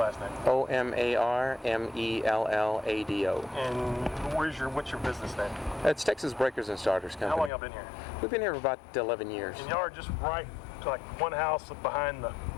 last name. Omarmellado. And what's your business name? It's Texas Breakers and Starters Company. How long y'all been here? We've been here for about 11 years. And y'all are just right, like one house behind the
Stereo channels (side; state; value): right; drops out; at 7.5 s